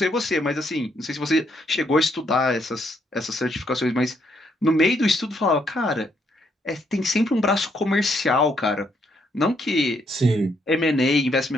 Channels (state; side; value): normal; both; correlation 0.74